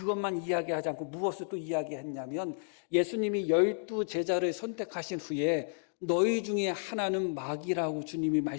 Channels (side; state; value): right; silent; digital silence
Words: 이야기하지 않고 무엇을 또 이야기했냐면 예수님이 12 제자를 선택하신 후에 너희 중에 하나는 마귀라고 주님이